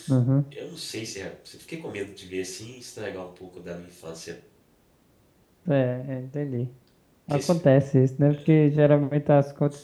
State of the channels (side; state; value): both; identical; correlation 1.00